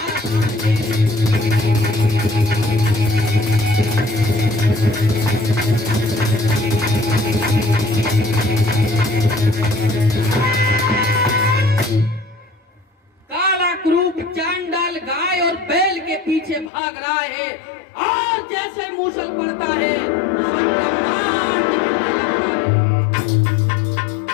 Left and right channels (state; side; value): drops out; right; at 16.7 s